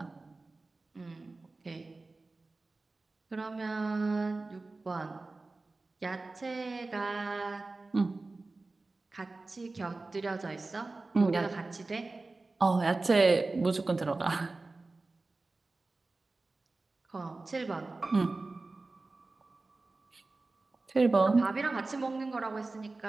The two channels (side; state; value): left; quieter; 3.4 dB